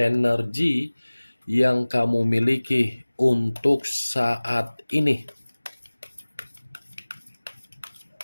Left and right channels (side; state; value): both; inverted; correlation -1.00